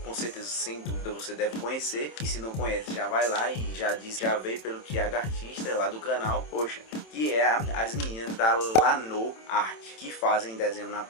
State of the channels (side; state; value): right; late; 27 ms